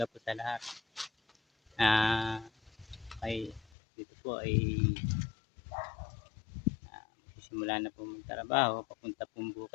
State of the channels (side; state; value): right; drops out; at 3.7 s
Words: po sa lahat. Ay dito po ay magsisimula na po magtrabaho papunta pong